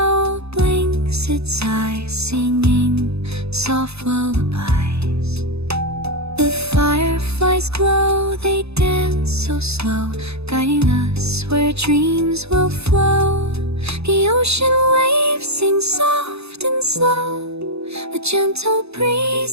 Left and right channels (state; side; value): late; left; 0.79 ms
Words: blinks its eyes, singing soft lullabies. The fireflies glow, they dance so slow, guiding us where dreams will flow. The ocean waves sing soft and slow, a gentle